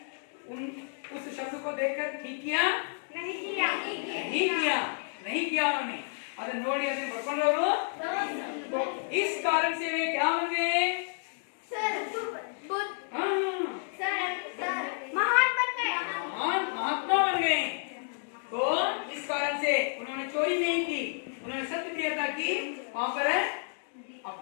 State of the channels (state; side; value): silent; right; 57 dB below the other